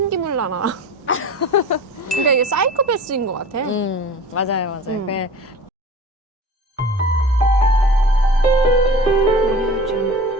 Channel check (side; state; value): both; normal; correlation 0.39